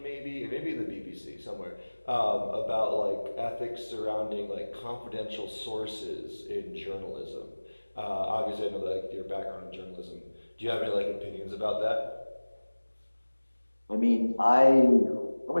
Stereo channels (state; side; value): inverted; both; correlation -1.00